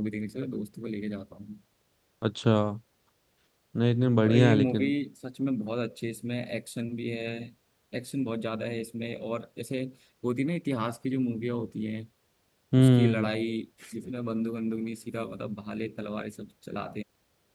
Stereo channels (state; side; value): identical; both; correlation 1.00